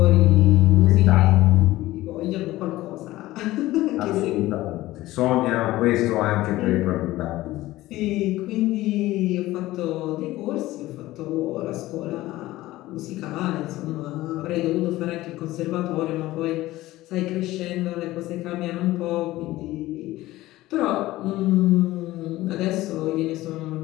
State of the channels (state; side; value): quieter; right; 17.0 dB